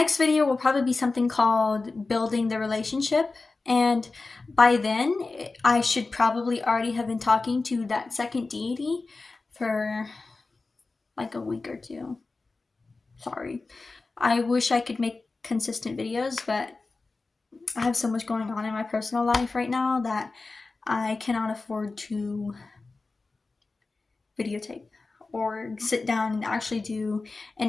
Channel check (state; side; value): quieter; right; 3.7 dB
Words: video will probably be something called Building the Relationship, and by then I should probably already have been talking to that second deity for like a week or two. Sorry. I wish I could make consistent videos, but I have so much going on in my personal life right now that I cannot afford to videotape or sit down and actually do